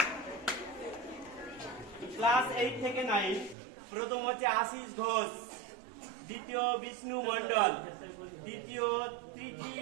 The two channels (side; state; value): left; drops out; at 3.6 s